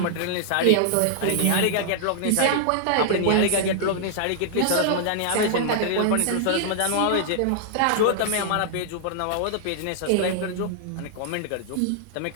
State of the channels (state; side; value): different; both; correlation -0.01